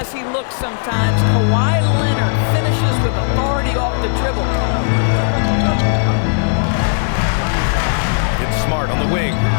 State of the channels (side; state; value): right; silent; 58 dB below the other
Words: he looks sometimes, Kawhi Leonard finishes with authority off the dribble. It's Smart on the wing.